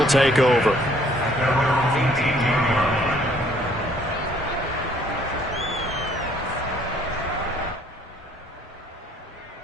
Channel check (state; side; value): normal; both; correlation 0.61